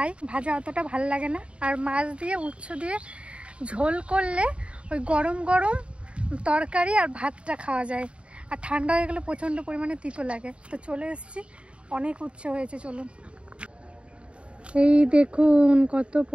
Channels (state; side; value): late; left; 0.059 ms